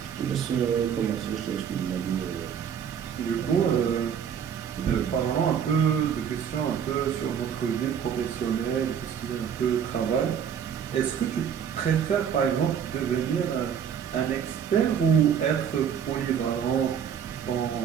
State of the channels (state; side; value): quieter; left; 8.1 dB